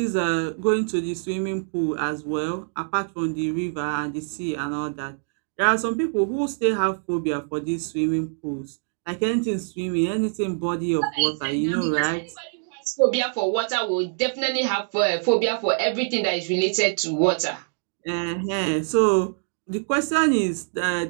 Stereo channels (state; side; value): silent; left; digital silence